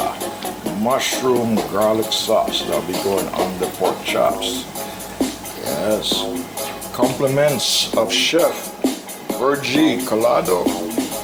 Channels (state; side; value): identical; both; correlation 1.00